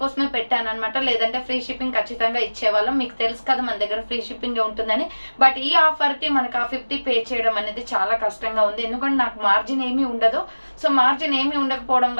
పెట్టాను అనమాట. లేదంటే ఫ్రీ షిప్పింగ్ ఖచ్చితంగా ఇచ్చేవాళ్ళం. మీకు తెలుసు కదా మన దగ్గర ఫ్రీ షిప్పింగ్ ఉంటుందని. బట్ ఈ ఆఫర్ కి మనకు ఆ 50 పే చేయడం అనేది చాలా కష్టంగా ఉంది. ఎందుకంటే నాకు మార్జిన్ ఏమీ ఉండదు. సో మార్జిన్ ఏమీ ఉండకపోవడం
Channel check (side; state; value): both; inverted; correlation -1.00